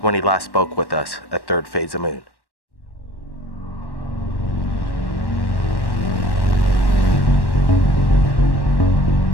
when he last spoke with us at Third Phase of Moon.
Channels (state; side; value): late; right; 1.1 ms